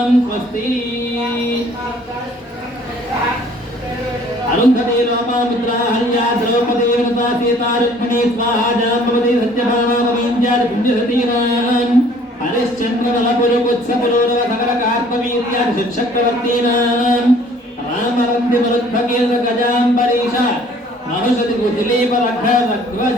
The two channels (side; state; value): both; normal; correlation 0.55